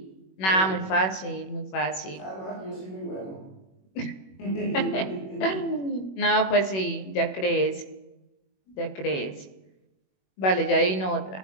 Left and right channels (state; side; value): late; right; 21 ms